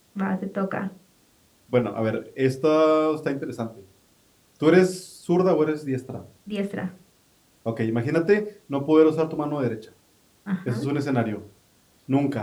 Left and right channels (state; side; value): identical; both; correlation 1.00